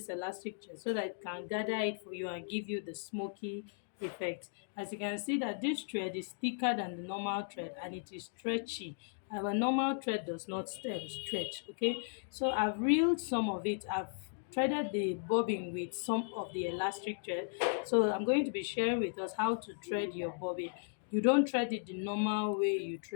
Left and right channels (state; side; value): silent; right; digital silence